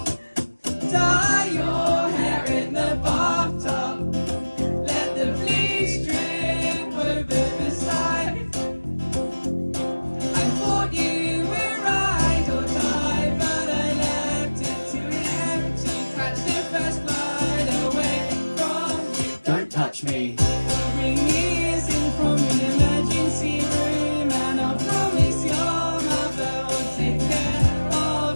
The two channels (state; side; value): inverted; both; correlation -1.00